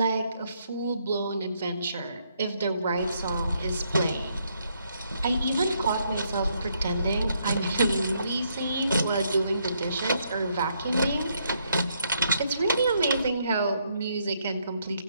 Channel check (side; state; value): both; inverted; correlation -0.74